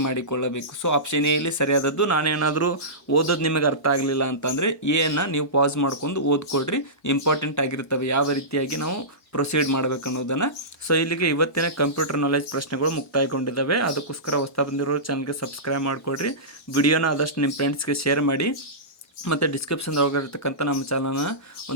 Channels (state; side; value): normal; both; correlation -0.18